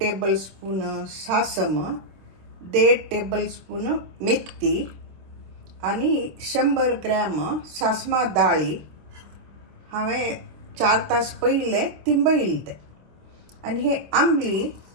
सासम, 1.5 टेबलस्पून मेथी आणि 100 ग्रॅम सासमा दाळी हांवें 4 तास पयले तिंबयले ते। आणि हे आंबली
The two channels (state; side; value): late; left; 26 ms